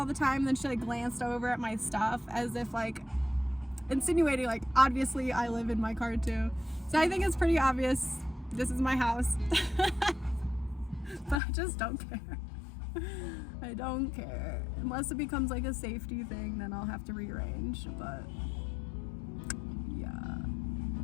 the time. And then she like glanced over at my stuff as if like insinuating like, obviously I live in my car too. So I think it's pretty obvious this is my house. But I just don't care. I don't care. Unless it becomes like a safety thing, then I'll have to rearrange. But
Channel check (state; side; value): drops out; right; at 11.4 s